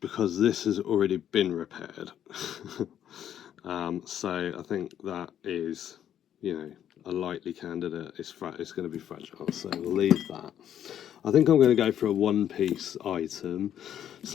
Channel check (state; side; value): quieter; right; 10.2 dB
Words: this has already been repaired. So I think that is, a likely candidate. It's going to be fragile, so we'll leave that. I think I'm going to go for a one-piece item.